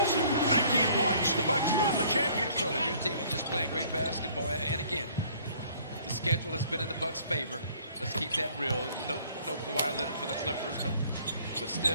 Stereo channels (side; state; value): both; inverted; correlation -0.57